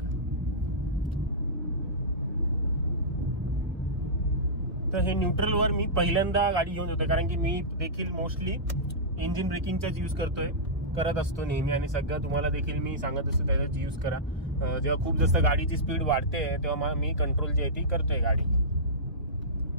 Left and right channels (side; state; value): both; normal; correlation -0.16